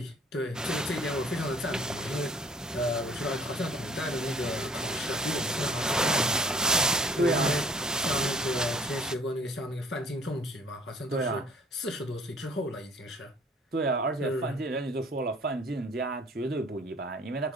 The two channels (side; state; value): both; normal; correlation 0.53